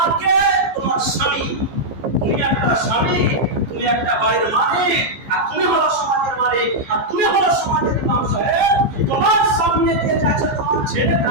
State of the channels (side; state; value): left; late; 15 ms